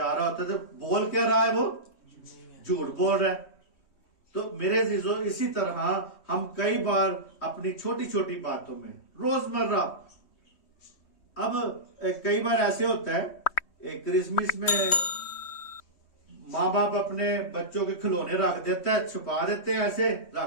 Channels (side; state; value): right; late; 3.1 ms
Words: رہا ہوتا ہے۔ تو بول کیا رہا ہے وہ؟ جھوٹ بول رہا ہے۔ تو میرے عزیزو اسی طرح ہم کئی بار اپنی چھوٹی چھوٹی باتوں میں روزمرہ، اب کئی بار ایسے ہوتا ہے کرسمس میں ماں باپ اپنے بچوں کے کھلونے رکھ دیتا ہے، چھپا دیتے ہیں، ایسے